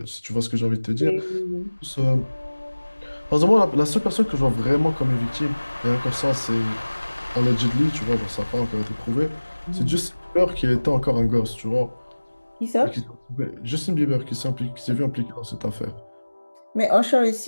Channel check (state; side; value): inverted; both; correlation -1.00